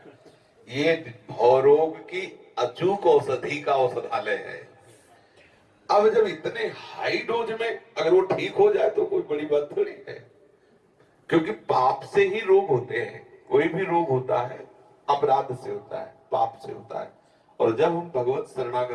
ये भवरोग की अचूक औषधि का औषधालय है। अब जब इतने हाई डोज में अगर वो ठीक हो जाए तो कोई बड़ी बात थोड़ी है, क्योंकि पाप से ही रोग होते हैं। कोई भी रोग होता है अपराध से होता है, पाप से होता है। और जब हम भगवत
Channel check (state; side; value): identical; both; correlation 1.00